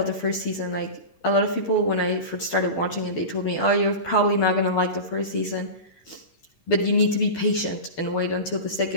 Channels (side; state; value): right; late; 12 ms